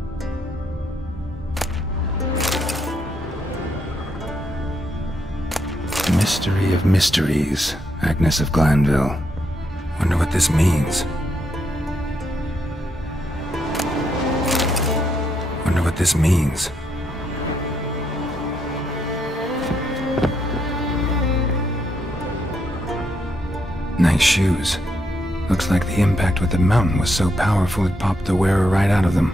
Mystery of mysteries, Agnes of Glanville. Wonder what this means. Wonder what this means. Nice shoes. Looks like the impact with the mountain was so powerful it popped the wearer right out of them.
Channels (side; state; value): both; normal; correlation 0.78